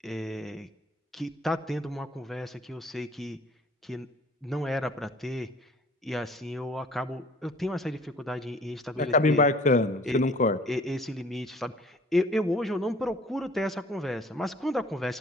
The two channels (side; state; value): both; normal; correlation 0.52